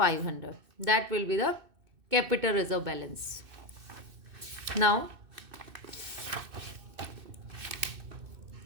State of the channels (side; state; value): left; late; 2.6 ms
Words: that will be the capital reserve balance. Now